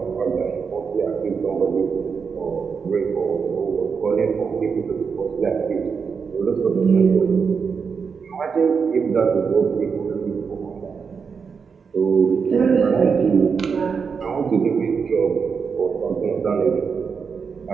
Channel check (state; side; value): quieter; left; 5.8 dB